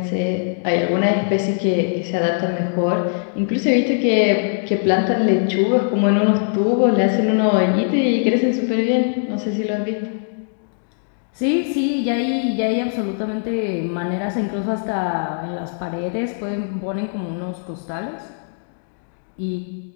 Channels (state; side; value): silent; right; digital silence